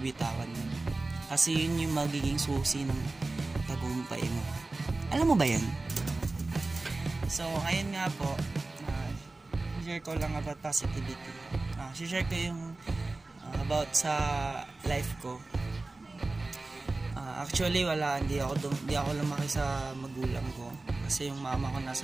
yun. Kasi yun yung magiging susi ng tagumpay mo. Alam mo ba yan? So, ayun nga po. Share ko lang about positivity. Share ko yung about sa life ko. Actually hindi ako lumaki sa magulang ko kasi yung mama ko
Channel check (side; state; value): left; quieter; 3.3 dB